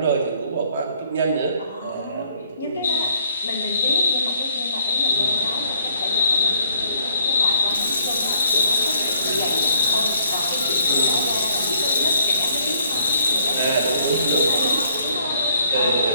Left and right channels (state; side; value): inverted; both; correlation -0.63